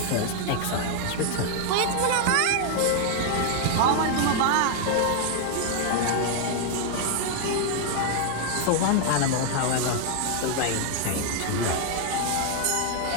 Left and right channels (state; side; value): different; both; correlation 0.00